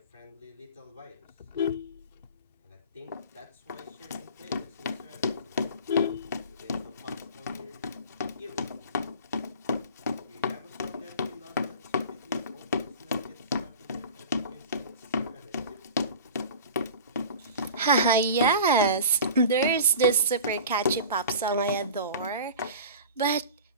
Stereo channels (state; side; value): inverted; both; correlation -0.37